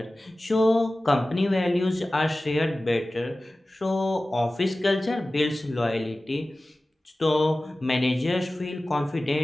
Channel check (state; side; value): normal; both; correlation 0.96